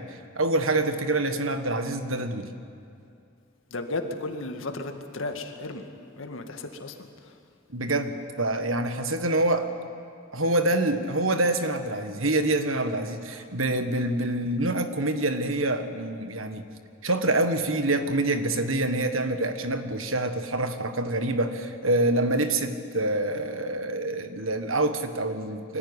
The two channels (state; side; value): normal; both; correlation -0.11